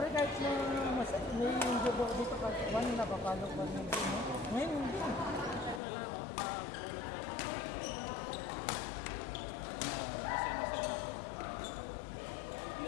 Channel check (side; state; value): right; drops out; at 5.8 s